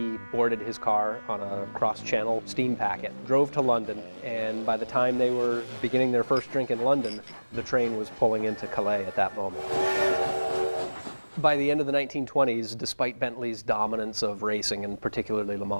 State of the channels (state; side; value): inverted; both; correlation -1.00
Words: boarded his car on a cross-channel steam packet, drove to London, and by the time they were beginning their first drink in London, the train was pulling into Calais at that moment. By the end of the 1920s, despite Bentley's dominance of racing, and particularly Le